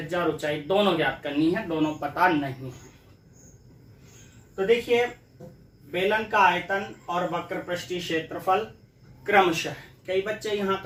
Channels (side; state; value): both; identical; correlation 1.00